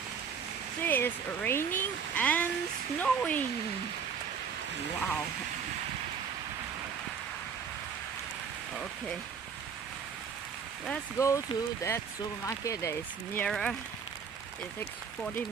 See, it's raining and snowing. Wow. Okay. Let's go to that supermarket that is nearer. It takes 40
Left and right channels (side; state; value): left; quieter; 6.5 dB